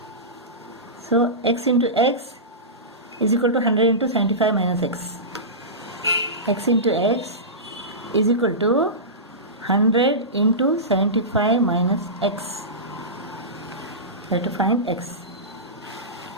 So x into x is equal to 100 into 75 minus x. X into x is equal to 100 into 75 minus x. We have to find x.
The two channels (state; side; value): normal; both; correlation -0.18